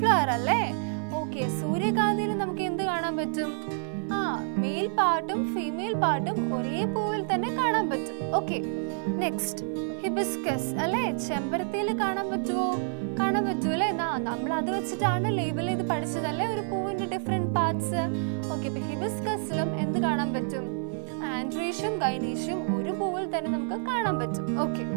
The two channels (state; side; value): silent; left; 59 dB below the other